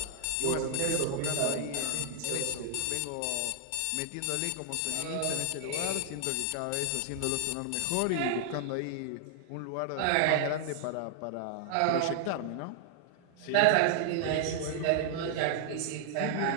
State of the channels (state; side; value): different; both; correlation 0.00